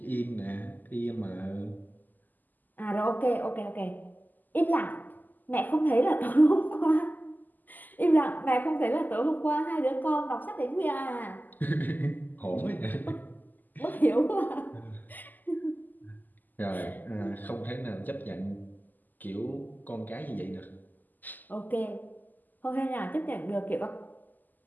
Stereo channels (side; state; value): right; late; 0.085 ms